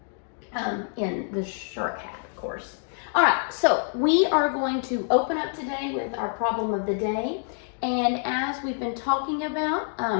in the shark hat, of course. All right, so we are going to open up today with our problem of the day. And as we've been talking about,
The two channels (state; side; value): silent; right; 57 dB below the other